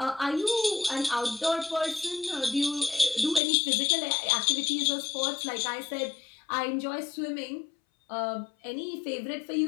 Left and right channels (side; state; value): right; drops out; at 3.4 s